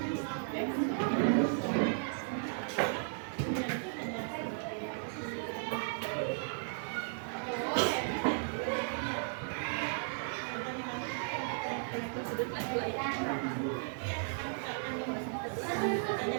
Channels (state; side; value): silent; left; digital silence